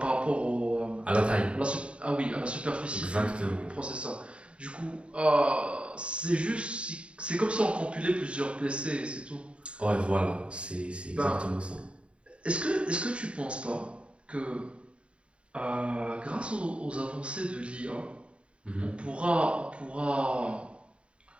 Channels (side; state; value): left; late; 0.058 ms